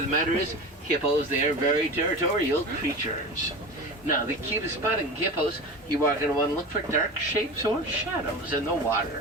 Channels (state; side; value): normal; both; correlation 0.30